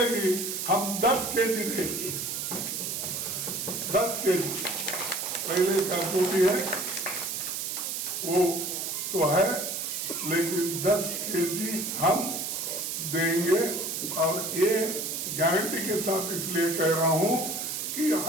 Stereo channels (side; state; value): right; noise; hiss, 3 dB below the sound